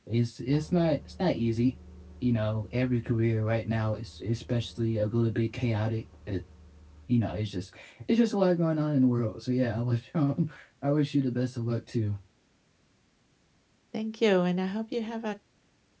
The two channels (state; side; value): identical; both; correlation 1.00